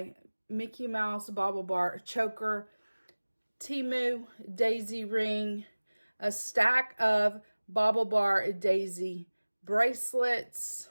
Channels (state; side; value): inverted; both; correlation -1.00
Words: Mickey Mouse Bauble Bar choker, Temu daisy ring, a stack of Bauble Bar daisy bracelets,